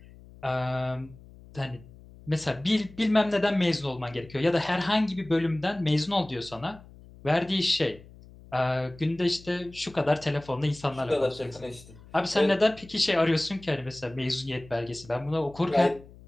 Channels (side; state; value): left; noise; hum, 21 dB below the sound